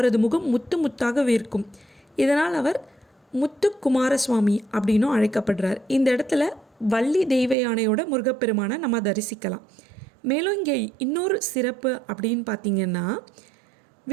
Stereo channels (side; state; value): left; drops out; at 7.6 s